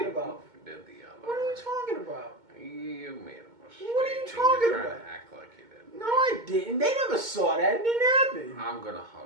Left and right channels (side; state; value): left; late; 2.2 ms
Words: about? You did the other What are you way. talking about? You made a mistake. What are you and talking you're about? trying to act like you did. No, I didn't. They never saw that. It didn't happen. I'm gonna